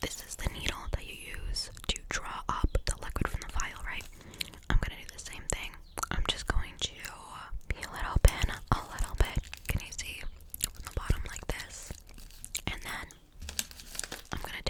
this is the needle that you use to draw up the liquid from the vial, right? I'm gonna do the same thing. I'm just going to peel it open a little bit. Can you see from the bottom like this? And then I'm gonna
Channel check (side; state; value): both; identical; correlation 1.00